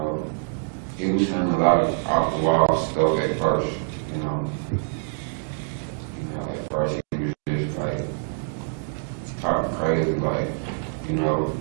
he was saying a lot of off-the-wall stuff at first, you know. You know, at first he was just like talking crazy, like, you know,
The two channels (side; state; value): left; silent; digital silence